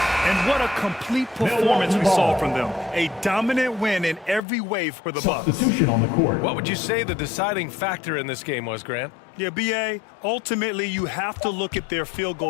And what a complete performance we saw from them. A dominant win in every way for the Bucks. Substitution on the court. What would you say the deciding factor in this game was, Grant? Yeah, B.A., ultimately you have to look at their field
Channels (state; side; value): drops out; right; at 4.4 s